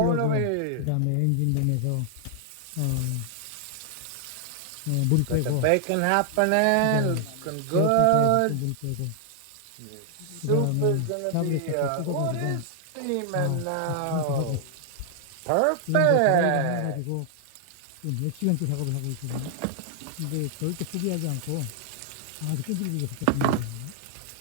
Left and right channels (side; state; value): both; different; correlation 0.00